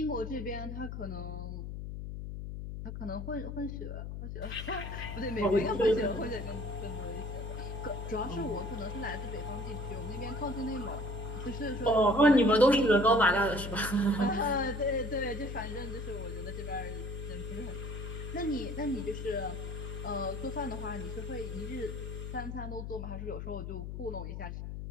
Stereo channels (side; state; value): left; noise; hum, 6 dB below the sound